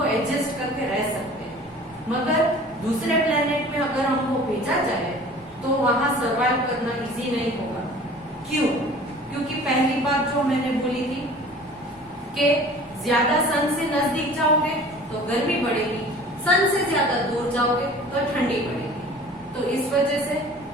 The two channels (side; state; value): both; normal; correlation 0.45